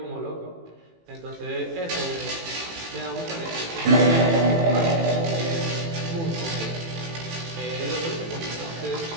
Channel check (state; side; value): late; left; 18 ms